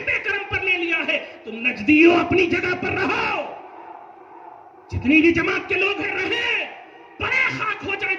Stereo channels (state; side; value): identical; both; correlation 1.00